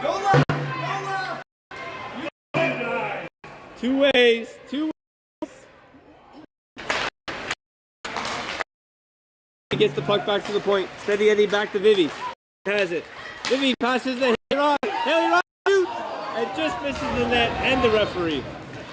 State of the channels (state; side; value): identical; both; correlation 1.00